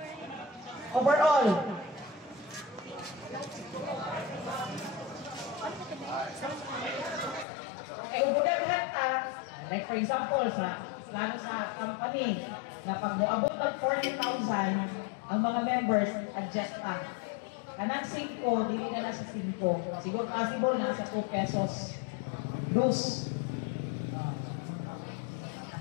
Overall. Okay, ubudaghan ka. Like for example, lalo sa company, na pag moabot mag 40,000, ang mga members, adjust ka. Kanang 5, dili na sa 5. Siguro possible na sa 2 pesos. Dus.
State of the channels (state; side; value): drops out; right; at 7.5 s